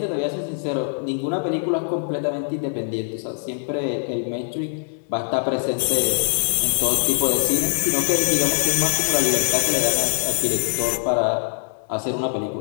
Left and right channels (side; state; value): right; silent; digital silence